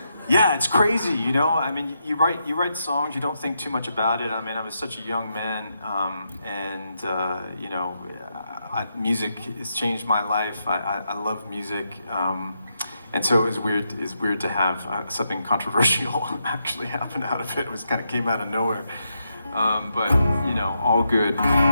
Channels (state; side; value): inverted; both; correlation -0.82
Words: it's crazy, I mean, you write songs, you don't think too much about it. I mean, I was such a young man, music has changed my life. I love music, and so it was weird to have something controversial actually happen out of it. It was kind of came out of nowhere. But all good,